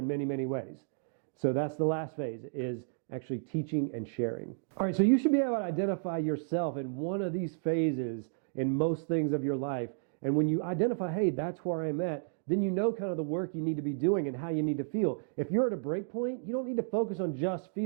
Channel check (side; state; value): left; silent; digital silence